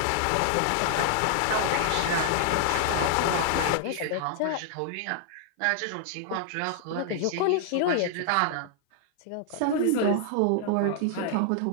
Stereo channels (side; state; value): both; different; correlation -0.01